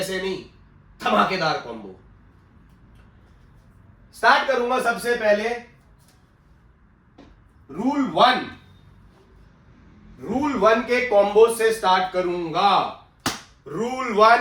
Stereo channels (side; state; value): both; identical; correlation 1.00